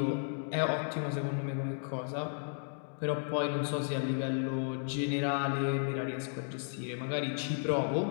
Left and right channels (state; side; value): silent; right; digital silence